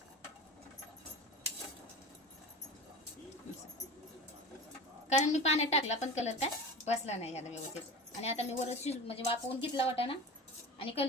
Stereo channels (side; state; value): both; normal; correlation 0.33